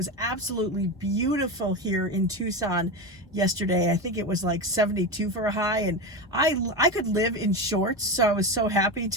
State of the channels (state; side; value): normal; both; correlation 0.19